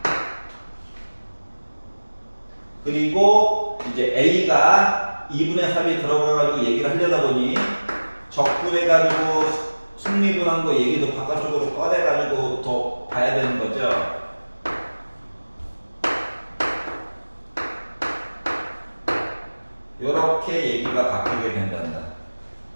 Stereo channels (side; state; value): both; inverted; correlation -1.00